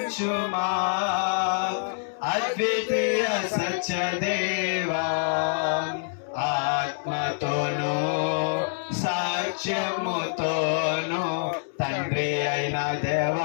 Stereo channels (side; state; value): right; silent; 61 dB below the other